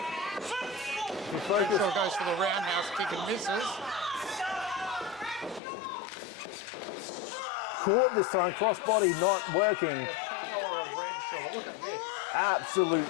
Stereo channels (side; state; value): right; drops out; at 5.6 s